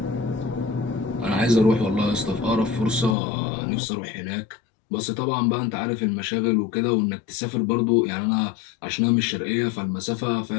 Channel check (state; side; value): drops out; right; at 3.2 s